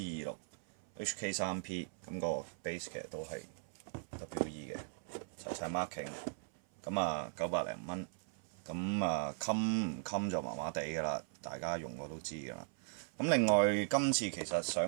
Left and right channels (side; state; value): left; silent; 52 dB below the other